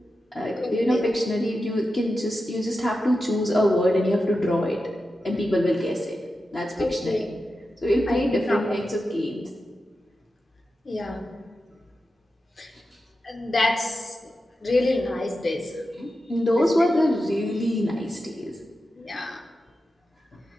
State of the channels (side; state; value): both; normal; correlation 0.91